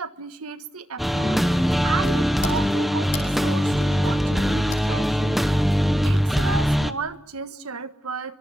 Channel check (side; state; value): both; normal; correlation 0.90